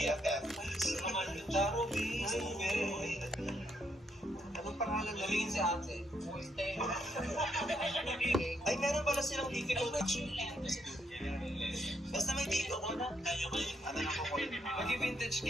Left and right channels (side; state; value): both; normal; correlation 0.75